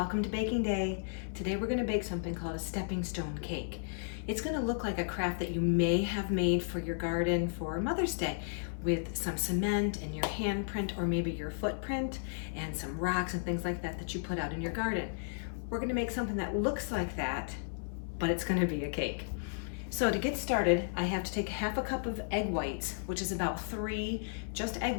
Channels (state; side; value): silent; right; 55 dB below the other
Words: to baking day. Today we're going to bake something called a stepping stone cake. It's going to look like a craft that you may have made for your garden for Mother's Day with some cement and your handprint or maybe your footprint and some rocks and things like that that you put out in your garden. We're going to make something that looks like that, but it's going to be a cake. So to get started, I have to take half a cup of egg whites, which is about 3 just